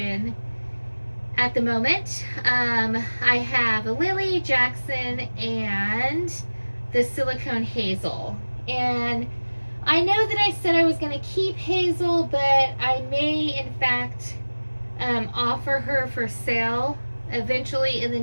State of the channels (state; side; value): inverted; both; correlation -1.00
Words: at the moment. I have a Lily, Jackson, and the silicone Hazel. And I know that I said I was going to keep Hazel, but I may in fact offer her for sale eventually in the